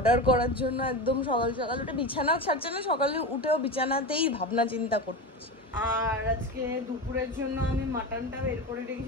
করার জন্য একদম সকাল সকাল উঠে, বিছানাও ছাড়ছে না, সকালে উঠেও বিছানাতেই ভাবনা চিন্তা করছে। আর আজকে দুপুরের জন্য আমি মাটনটা বের করে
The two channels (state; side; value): normal; both; correlation 0.23